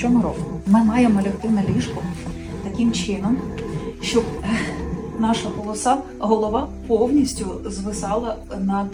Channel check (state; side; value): identical; both; correlation 1.00